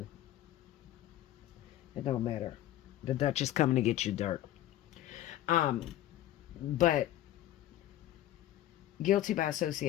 It don't matter. The Dutch is coming to get you, dark. But guilty by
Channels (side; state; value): right; quieter; 13.5 dB